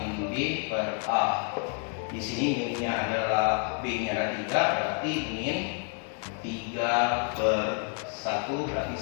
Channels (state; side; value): quieter; right; 37.8 dB